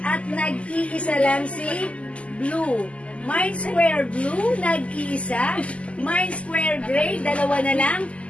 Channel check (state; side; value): late; right; 0.061 ms